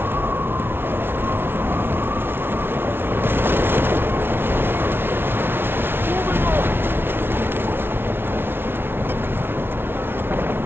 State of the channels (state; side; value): late; left; 0.11 ms